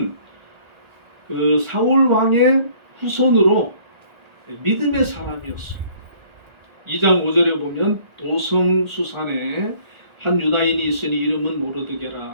그 사울 왕의 후손으로 믿음의 사람이었어요. 2장 5절에 보면 도성 수산에 한 유다인이 있으니 이름은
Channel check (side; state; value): left; late; 1.4 ms